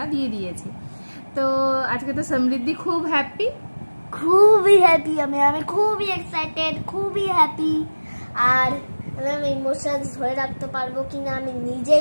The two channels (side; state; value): both; inverted; correlation -1.00